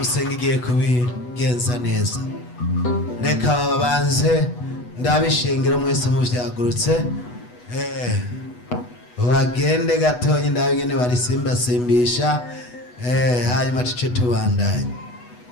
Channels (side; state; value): right; late; 8.2 ms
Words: igiye kubigenza neza. Reka babanze ndabishengero mwese muvyagurutse bagende gatonyi ndabigene barisimbasimbisha hanyuma tuce tubandanye.